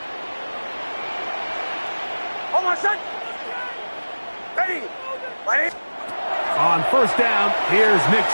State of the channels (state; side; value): inverted; both; correlation -1.00